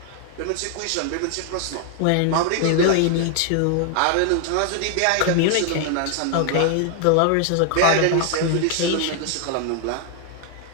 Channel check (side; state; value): both; different; correlation 0.00